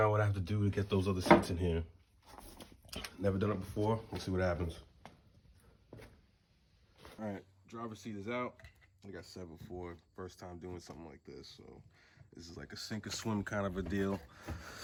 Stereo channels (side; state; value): both; identical; correlation 1.00